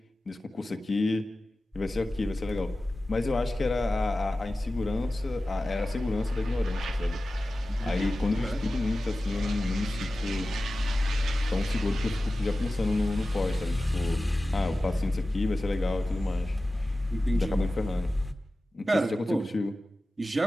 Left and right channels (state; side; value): normal; both; correlation 0.95